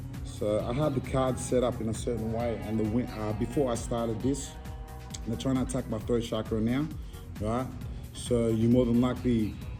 So I had the cards set up in a certain way, and before I started this, they're trying to attack my throat chakra now, right? So you more than likely,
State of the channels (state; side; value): identical; both; correlation 1.00